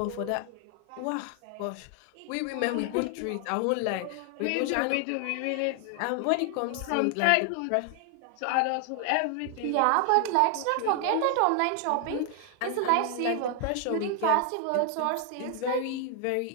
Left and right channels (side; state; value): both; different; correlation 0.00